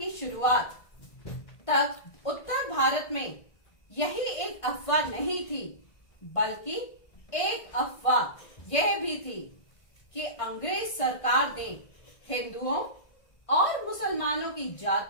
शुरुआत तक उत्तर भारत में यही एक अफवाह नहीं थी, बल्कि एक अफवाह यह भी थी कि अंग्रेज सरकार ने हिंदुओं और मुसलमानों की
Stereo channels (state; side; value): late; right; 1.5 ms